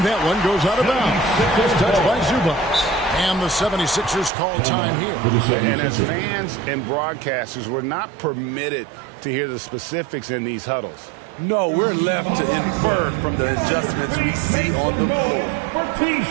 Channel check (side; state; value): left; drops out; at 4.3 s